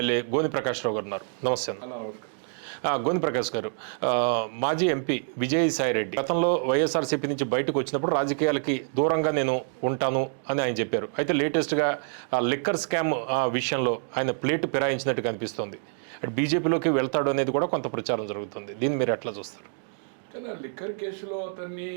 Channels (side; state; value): left; silent; digital silence